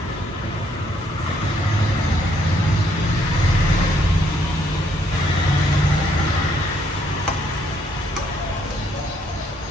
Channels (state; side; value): normal; both; correlation 0.70